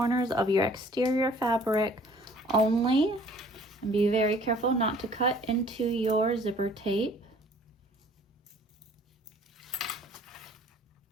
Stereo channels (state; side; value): normal; both; correlation 0.54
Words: of your exterior fabric only, and be very careful not to cut into your zipper tape.